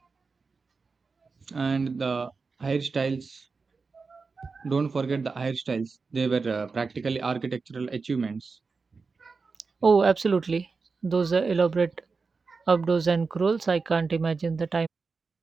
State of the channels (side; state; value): left; quieter; 4.5 dB